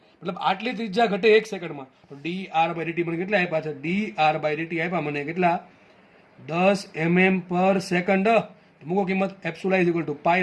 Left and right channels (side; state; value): both; identical; correlation 1.00